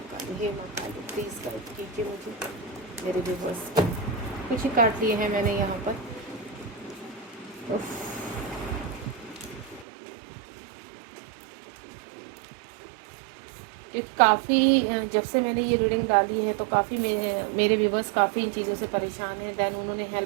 काली, हे माँ काली, प्लीज़ गाइड कीजिए मुझे, मेरे व्यूवर्स कुछ ही काट लिए हैं मैंने यहाँ पर। काफ़ी जब से मैंने ये रीडिंग डाली है तो काफ़ी मेरे व्यूवर्स काफ़ी इन चीज़ों से परेशान हैं। दैन उन्होंने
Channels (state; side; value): drops out; left; at 9.9 s